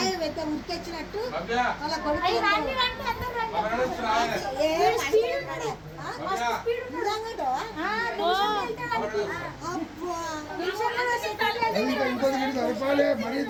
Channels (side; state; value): both; identical; correlation 1.00